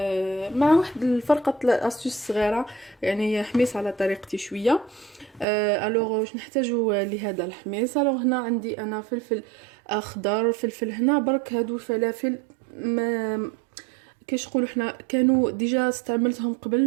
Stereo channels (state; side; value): drops out; left; at 5.5 s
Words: مع واحد الفرقه استيوس صغيره، يعني حميص على طريقتي شويه. الوغ واش نحتاجو لهذا الحميص؟ الوغ هنا عندي انا فلفل اخضر، فلفل هنا برك. هادو الفلافل ما كيش نقولوا حنا كانوا ديجا استعملتهم